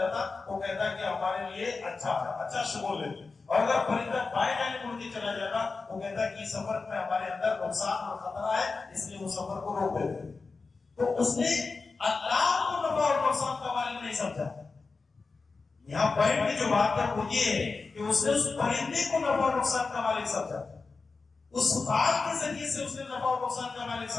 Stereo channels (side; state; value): right; quieter; 4.2 dB